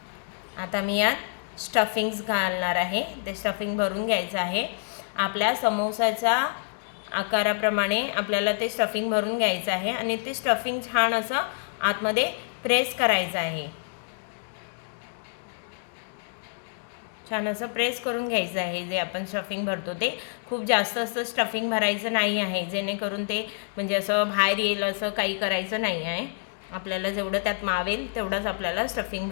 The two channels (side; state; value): right; silent; digital silence